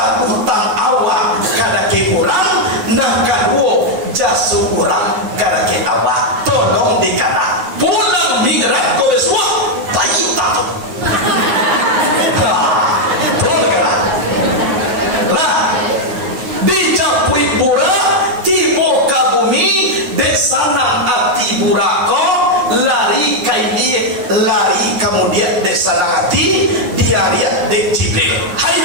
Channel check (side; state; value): left; late; 9.4 ms